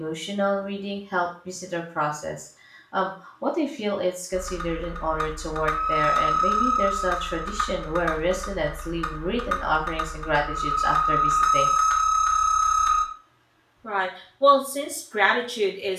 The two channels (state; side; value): identical; both; correlation 1.00